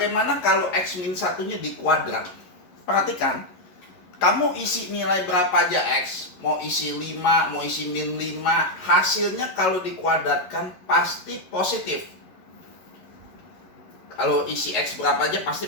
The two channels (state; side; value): late; right; 11 ms